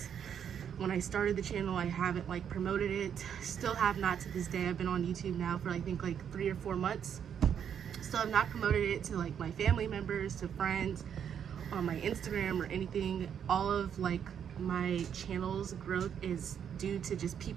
when I started the channel, I haven't like promoted it. Still have not to this day. I've been on YouTube now for I think like 3 or 4 months. Still have not promoted it to like my family members, to friends, on my Instagram or anything. All of like my channel's growth is due to just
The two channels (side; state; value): left; quieter; 8.4 dB